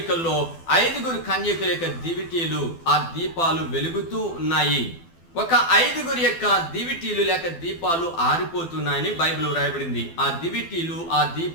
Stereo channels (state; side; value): late; right; 12 ms